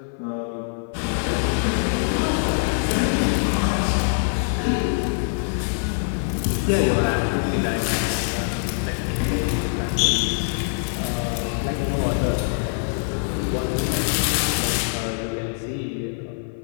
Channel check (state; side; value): silent; right; 55 dB below the other